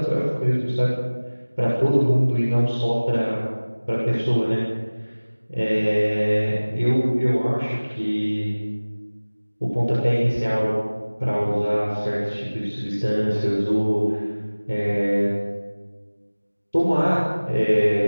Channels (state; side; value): inverted; both; correlation -1.00